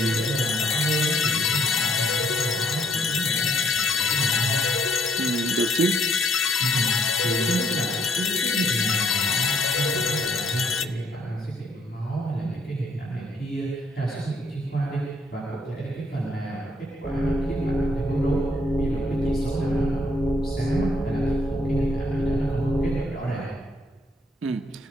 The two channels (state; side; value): normal; both; correlation 0.67